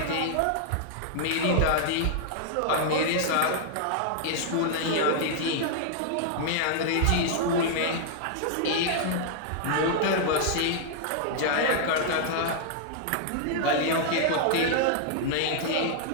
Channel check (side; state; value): both; different; correlation -0.01